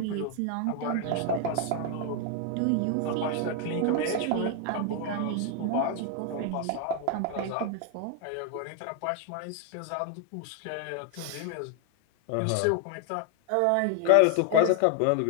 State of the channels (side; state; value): both; different; correlation 0.00